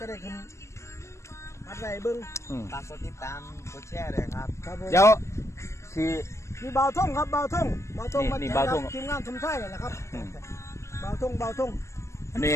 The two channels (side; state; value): right; late; 0.14 ms